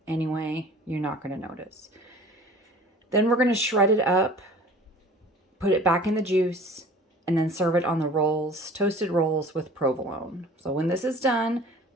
anyway, you're not going to notice. Then we're going to shred it up, put it back in the juice, and then serve it on the rolls, toasted rolls with provolone. So when this is done,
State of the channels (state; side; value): normal; both; correlation 0.46